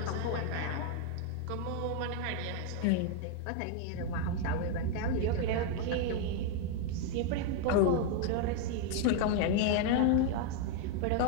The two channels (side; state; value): both; different; correlation 0.00